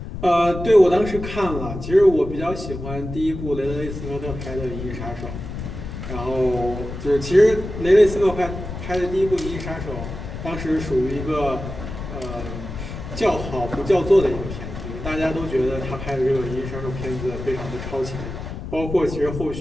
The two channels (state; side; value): noise; left; rumble, 8 dB below the sound